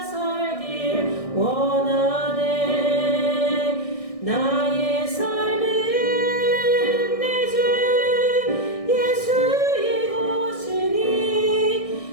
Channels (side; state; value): right; late; 1.6 ms